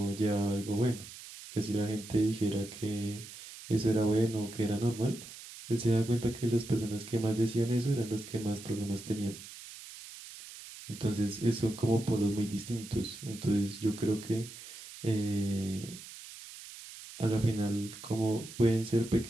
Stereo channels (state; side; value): noise; right; hiss, 14 dB below the sound